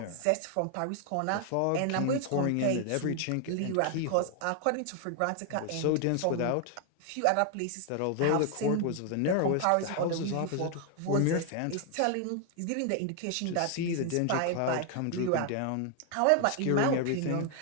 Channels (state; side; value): different; both; correlation 0.00